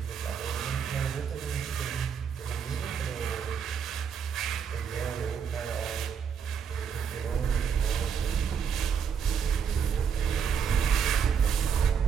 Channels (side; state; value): left; quieter; 7.1 dB